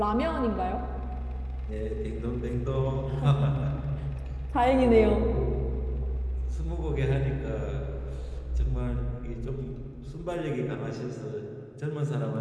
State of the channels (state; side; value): identical; both; correlation 1.00